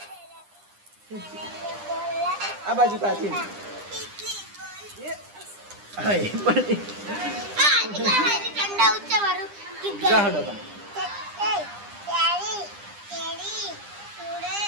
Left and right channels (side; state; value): left; late; 9.9 ms